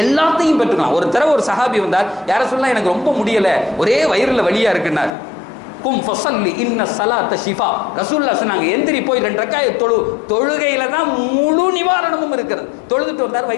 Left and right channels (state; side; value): drops out; right; at 5.1 s